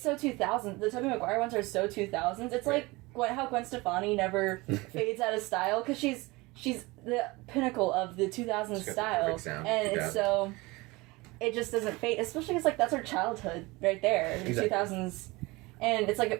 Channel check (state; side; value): quieter; left; 23.0 dB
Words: so 2000s. The Tobey Maguire ones are so 2000s. It's like how Gwen Stefani never fades out of style, because she's the pinnacle of the 2000s style, and it's so it just doesn't fade. Especially because, like, that's her childhood right there, the 2000s, and it's like